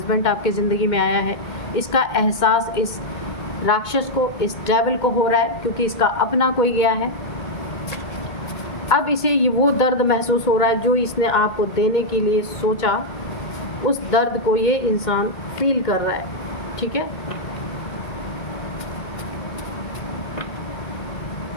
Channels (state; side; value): late; right; 2.2 ms